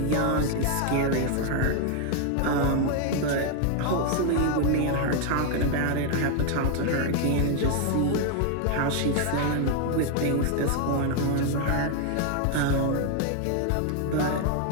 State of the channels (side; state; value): both; different; correlation 0.00